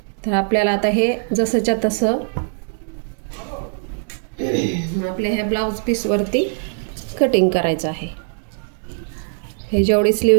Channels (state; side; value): silent; left; digital silence